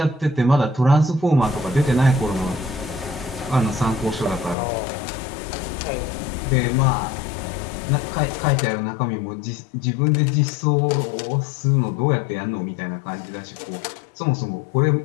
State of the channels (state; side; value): drops out; right; at 4.5 s